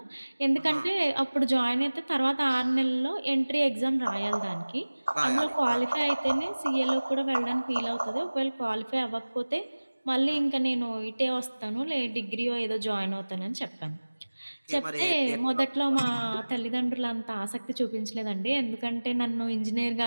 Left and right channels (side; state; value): both; inverted; correlation -1.00